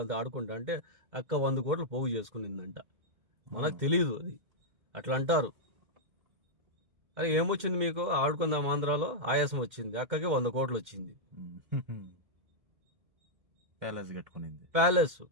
ఆడుకుంటా అంటే అక్క 100 కోట్లు పోగు చేసుకునిందంట. మనకు తెలియదు అది. అట్లా అంటారు. అరే ఏమొచ్చింది మీకు? ఆడుకుందాం ఆంధ్రాలో ఆయాసం వచ్చింది, అక్కకి 100 కోట్లు వచ్చింది. ప్యాలెస్ కట్టుకునింది.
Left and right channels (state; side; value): late; left; 2.1 ms